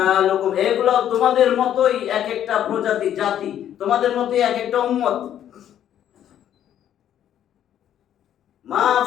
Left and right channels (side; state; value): right; quieter; 10.6 dB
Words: এগুলো তোমাদের মতোই এক একটা প্রজাতি জাতি, তোমাদের মতোই এক একটা উম্মত। মা